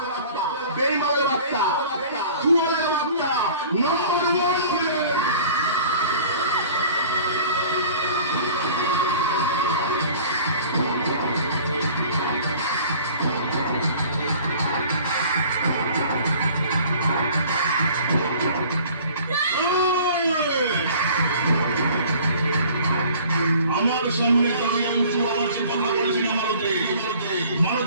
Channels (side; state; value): both; inverted; correlation -0.47